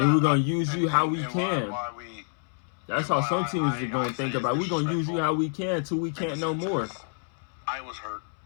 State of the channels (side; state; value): right; silent; 60 dB below the other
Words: we're going to use you how we and can. That's how some teams are going to think about it. We're going to use you how we can till we can't no more. I was hurt.